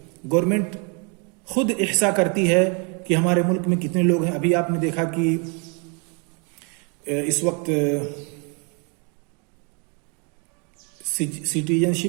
गवर्नमेंट खुद इहसा करती है कि हमारे मुल्क में कितने लोग हैं। अभी आपने देखा कि इस वक्त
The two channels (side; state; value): left; quieter; 35.4 dB